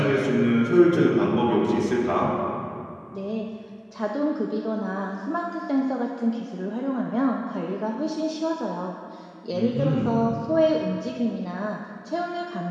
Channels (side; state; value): both; identical; correlation 1.00